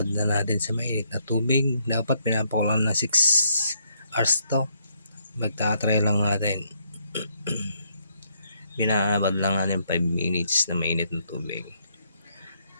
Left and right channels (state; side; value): inverted; both; correlation -0.73